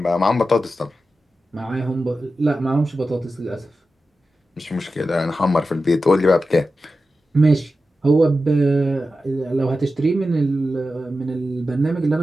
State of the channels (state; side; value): normal; both; correlation 0.92